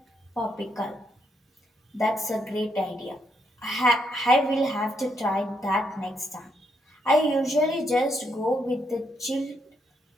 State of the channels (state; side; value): normal; both; correlation 0.77